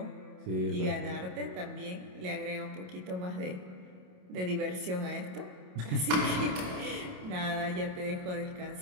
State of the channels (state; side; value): late; left; 27 ms